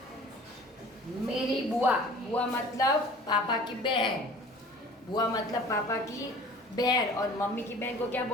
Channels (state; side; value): normal; both; correlation 0.46